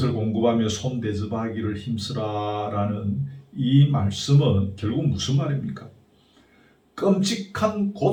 공급하며 손 대접하기를 힘쓰라라는 이 말씀은 결국 무슨 말입니까? 끔찍한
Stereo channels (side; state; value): both; identical; correlation 1.00